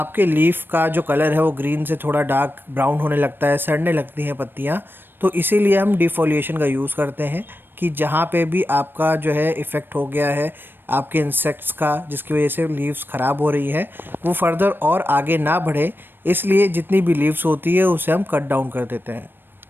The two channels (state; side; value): late; left; 0.097 ms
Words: लीफ का जो कलर है वो ग्रीन से थोड़ा डार्क ब्राउन होने लगता है, सड़ने लगती हैं पत्तियाँ। तो इसीलिए हम डिफोलिएशन का यूज़ करते हैं कि जहाँ पे भी आपका जो है इफ़ेक्ट हो गया है आपके इंसेक्ट्स का, जिसकी वजह से लीव्स ख़राब हो रही है, वो फर्दर और आगे ना बढ़े, इसलिए जितनी भी लीव्स होती है उसे हम कट डाउन कर देते हैं।